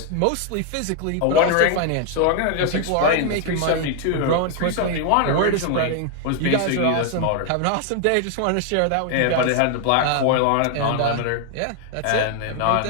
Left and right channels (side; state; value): both; different; correlation 0.00